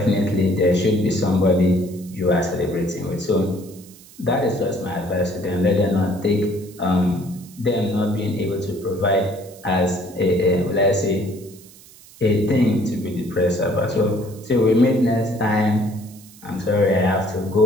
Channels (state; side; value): noise; right; hiss, 22 dB below the sound